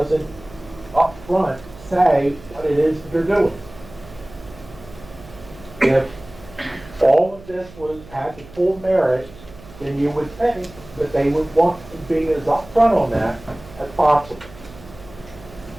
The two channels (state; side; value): noise; right; hum, 20 dB below the sound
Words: upfront say what it is that they're doing. If all of this had the full merit, then you would think that they would want to be as upfront on that as possible.